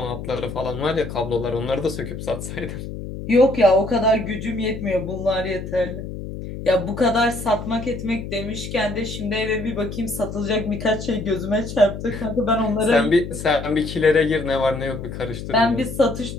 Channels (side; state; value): left; noise; hum, 8 dB below the sound